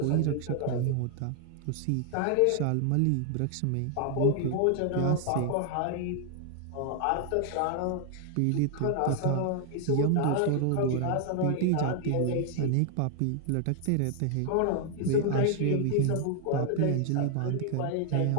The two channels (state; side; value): different; both; correlation 0.00